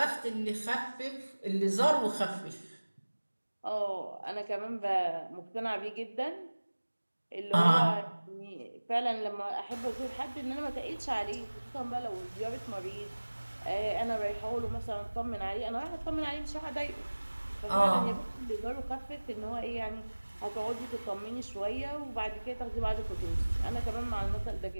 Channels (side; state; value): both; inverted; correlation -1.00